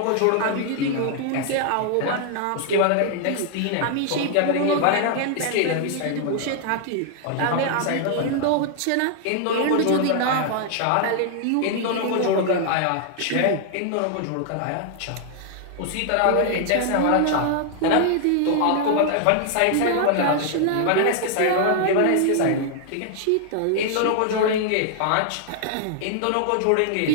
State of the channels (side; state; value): both; different; correlation 0.00